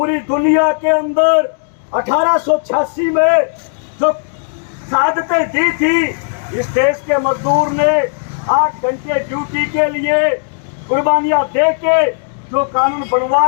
दुनिया के अंदर 1886 में जो शहादतें दी थी, इस देश के मजदूर ने 8 घंटे ड्यूटी के लिए कुर्बानियां देके जो कानून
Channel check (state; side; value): silent; right; digital silence